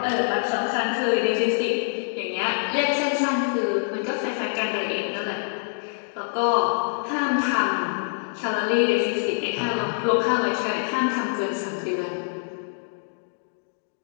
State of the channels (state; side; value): silent; right; digital silence